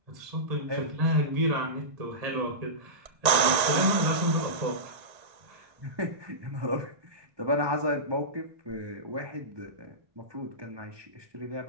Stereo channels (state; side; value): late; left; 1.8 ms